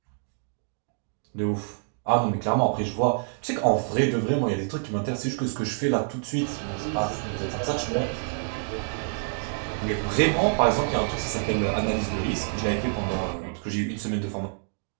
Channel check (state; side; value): silent; left; digital silence